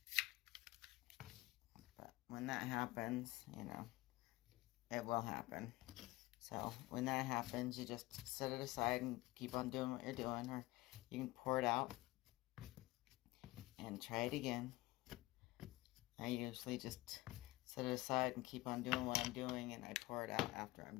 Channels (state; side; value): quieter; right; 19.3 dB